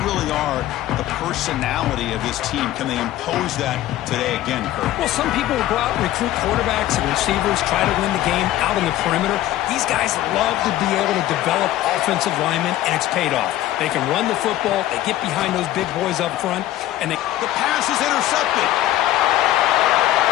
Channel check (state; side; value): quieter; right; 14.2 dB